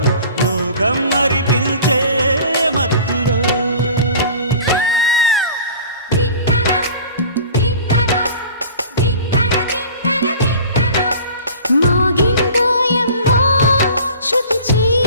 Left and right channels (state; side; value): inverted; both; correlation -0.42